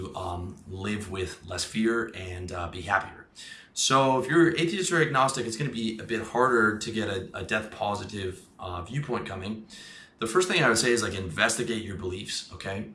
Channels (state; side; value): identical; both; correlation 1.00